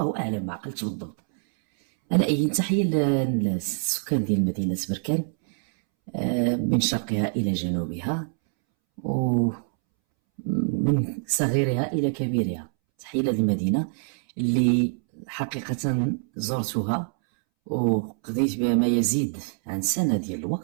اعلم، ما عقلتش بالضبط. على اي تحيه للسكان ديال مدينه بركان، من شرقها الى جنوبها ومن صغيرها الى كبيرها. تحيه للمدينه اللي حقيقه زرتها وقضيت بها ما يزيد عن سنه ديال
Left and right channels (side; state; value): left; silent; 62 dB below the other